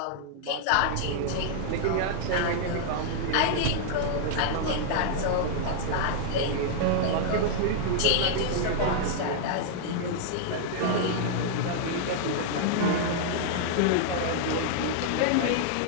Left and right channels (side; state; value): both; different; correlation -0.01